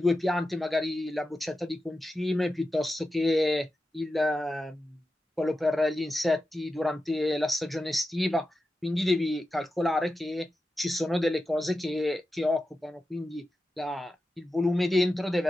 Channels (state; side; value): normal; both; correlation 0.91